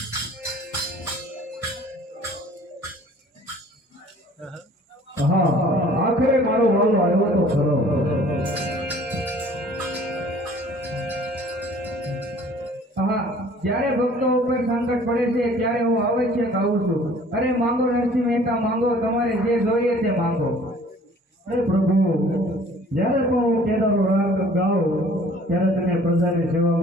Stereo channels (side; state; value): both; normal; correlation 0.52